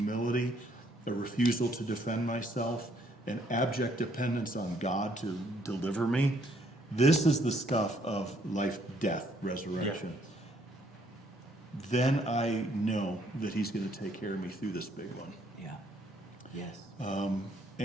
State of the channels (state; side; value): normal; both; correlation 0.67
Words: a refusal to defend myself, an abject dependence on God to deliver me. This is the stuff of life, death, resurrection. Yeah. Then I know that he's going to take care of me through this big one. Yeah. Yes.